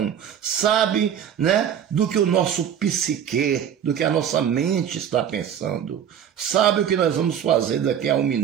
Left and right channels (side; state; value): left; quieter; 9.0 dB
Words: sabe, né, do que o nosso psique, do que a nossa mente está pensando, sabe o que nós vamos fazer daqui a 1